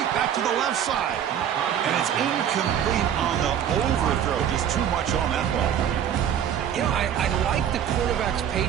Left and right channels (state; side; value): quieter; left; 9.4 dB